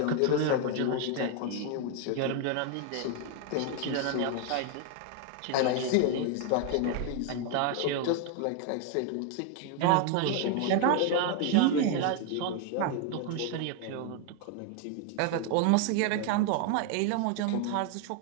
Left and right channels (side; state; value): both; different; correlation 0.01